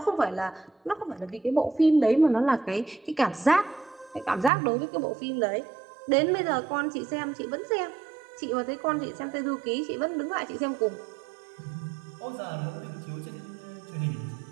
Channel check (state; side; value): drops out; left; at 4.5 s